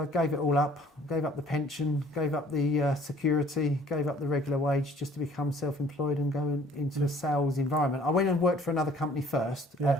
gave it all up. Gave up the pension, gave up the security, gave up the regular wage just to become self-employed and go into a sales environment. I went and worked for another company first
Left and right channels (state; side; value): normal; both; correlation 0.55